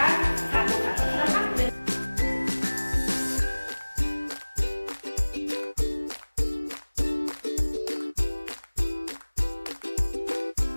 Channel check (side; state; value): both; inverted; correlation -1.00